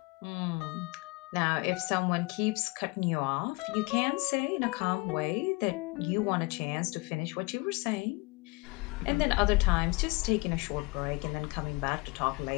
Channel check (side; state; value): right; quieter; 26.7 dB